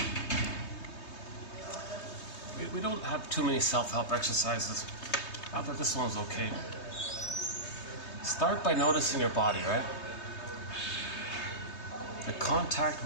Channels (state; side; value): late; right; 3.2 ms